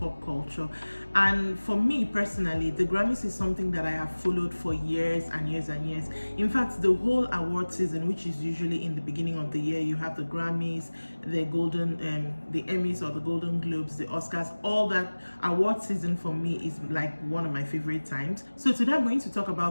culture, and for me personally the Grammys is something that I have followed for years and years and years. In fact, the whole award season, which is usually in the beginning of the year, you have the Grammys, the the Emmys or the Golden Globes, the Oscars, all that award season for me is like one of my favorite times. So today I'm going to talk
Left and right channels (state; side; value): inverted; both; correlation -1.00